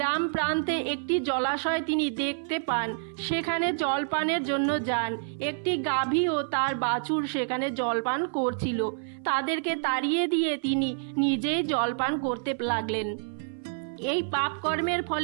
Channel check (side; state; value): left; silent; 56 dB below the other